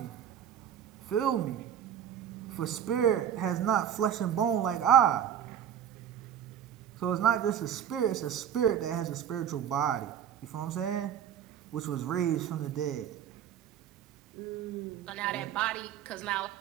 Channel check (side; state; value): left; quieter; 9.4 dB